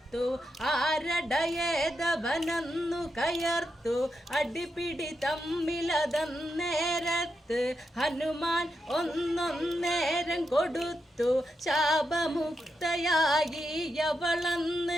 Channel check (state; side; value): normal; both; correlation 0.85